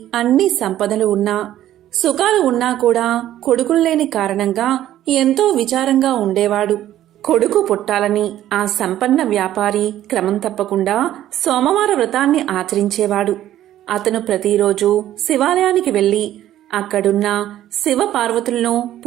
అన్ని సంపదలు ఉన్నా, సుఖాలు ఉన్నా కూడా కొడుకులు లేని కారణంగా ఎంతో విచారంగా ఉండేవాడు. కొడుకు పుట్టాలని ఆ సంపన్న వ్యాపారి క్రమం తప్పకుండా సోమవార వ్రతాన్ని ఆచరించేవాడు. అతను ప్రతిరోజు శివాలయానికి వెళ్లి అక్కడున్న శివ పార్వతులను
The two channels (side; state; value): left; quieter; 12.7 dB